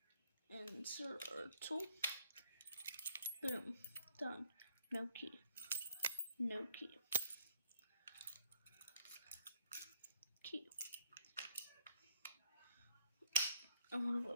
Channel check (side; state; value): both; inverted; correlation -0.65